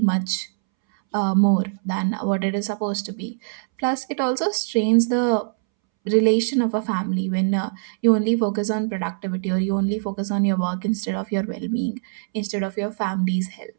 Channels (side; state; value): left; silent; 64 dB below the other